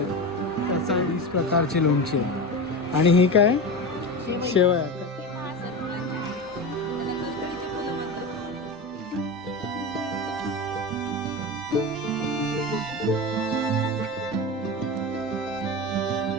त्याचा 20 प्रकारचे लोणचे आहे. आणि ही काय शेवया का?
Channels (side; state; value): both; normal; correlation 0.23